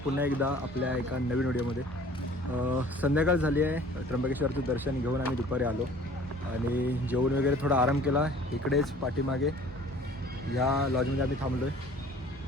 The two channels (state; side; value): normal; both; correlation 0.50